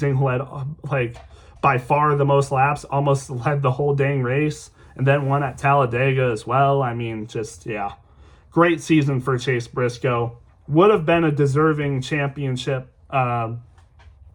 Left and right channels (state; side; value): identical; both; correlation 1.00